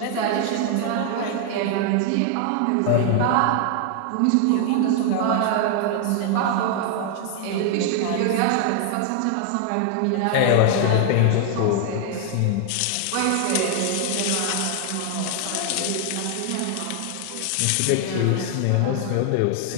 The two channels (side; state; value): both; different; correlation 0.00